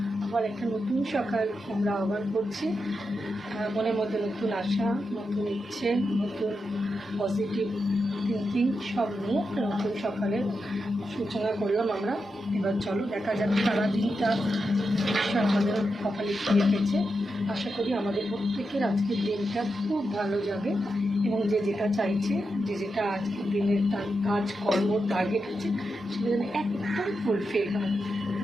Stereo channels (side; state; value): both; normal; correlation 0.87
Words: আবার একটা নতুন সকাল আমরা আহ্বান করছি। মনের মধ্যে নতুন আশা, নতুন ইচ্ছে, নতুন পজিটিভ থিঙ্কিং সব নিয়ে একটা নতুন সকালের সূচনা করলাম আমরা। এবার চলো দেখা যাক সারাদিনটা ঈশ্বর আমাদের কপালে কি রেখেছে। আশা করি আমাদের প্রত্যেকের আজকের দিনটা খুব ভালো যাবে এবং যে যেটা চাইছে, যে যেটা আজকের দিনের তার কাজ কর্ম টার্গেট আছে সেটা যেন একদম ফুলফিল হয়।